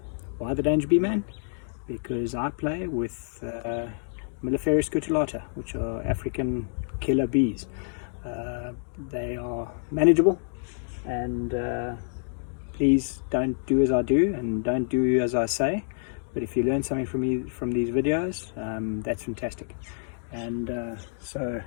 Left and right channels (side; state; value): right; silent; 60 dB below the other